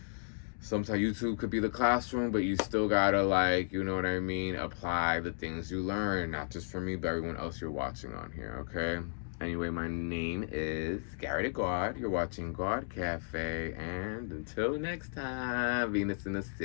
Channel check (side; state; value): right; silent; digital silence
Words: Sometimes YouTube could be the classroom, but you still gotta, like, you know what I mean, apply the things you learn, not just for me, but everyone else you're watching on here, okay? Anyway, my name is Gawd. You're watching Gawd Cafe. And until next time, Venus in the